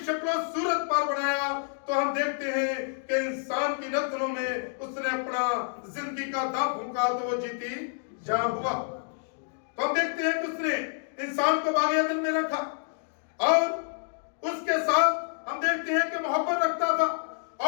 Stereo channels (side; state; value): right; silent; digital silence